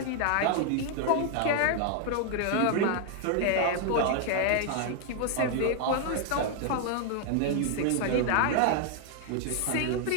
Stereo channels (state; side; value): different; both; correlation 0.00